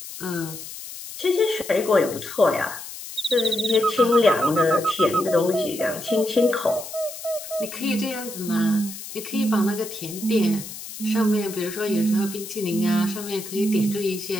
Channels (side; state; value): left; noise; hiss, 11 dB below the sound